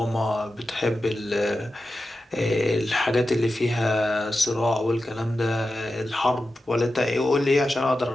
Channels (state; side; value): normal; both; correlation 0.92